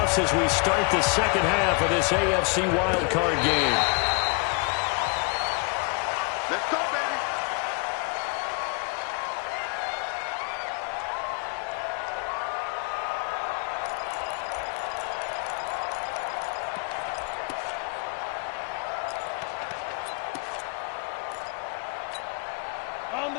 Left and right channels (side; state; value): right; quieter; 32.9 dB